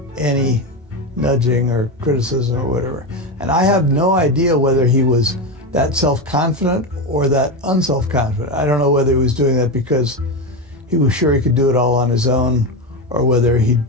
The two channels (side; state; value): both; normal; correlation 0.15